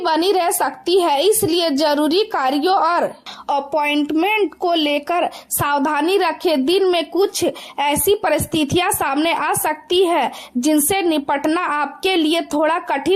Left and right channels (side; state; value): both; identical; correlation 1.00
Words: रह सकती है, इसलिए जरूरी कार्यों और अपॉइंटमेंट को लेकर सावधानी रखें। दिन में कुछ ऐसी परिस्थितियां सामने आ सकती है जिनसे निपटना आपके लिए थोड़ा